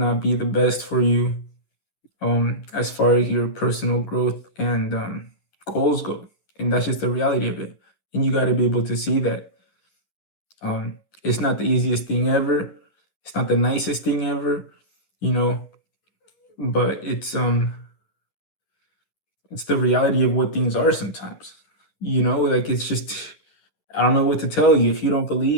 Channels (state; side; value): late; right; 10 ms